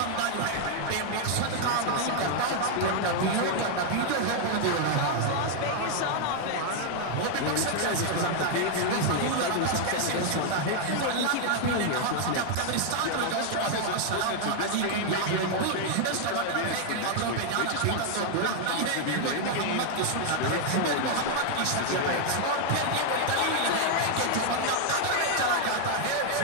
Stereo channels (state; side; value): different; both; correlation 0.00